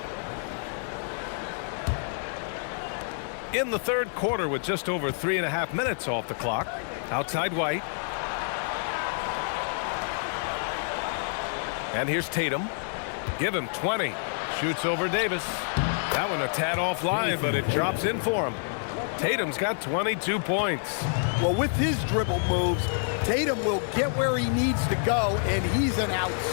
In the third quarter with just over 3.5 minutes off the clock. Outside White. And here's Tatum. Give him 20. Shoots over Davis. That one a tad offline, but it drops in for him. Tatum's got 22 points. Well, with his dribble moves, Tatum will get where he needs to go, and he's an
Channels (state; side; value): silent; right; 59 dB below the other